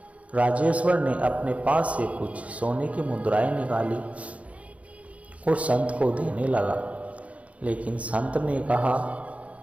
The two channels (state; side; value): late; left; 0.065 ms